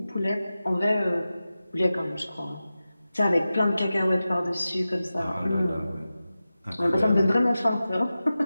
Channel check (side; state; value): both; inverted; correlation -0.94